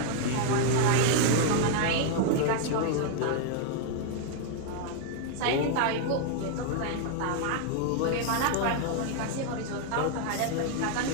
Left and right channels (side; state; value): both; different; correlation 0.00